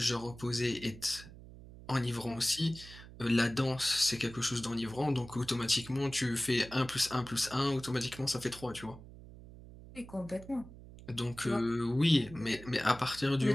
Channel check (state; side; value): noise; right; hum, 17 dB below the sound